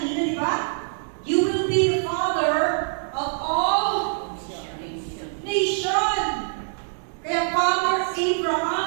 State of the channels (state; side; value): silent; left; digital silence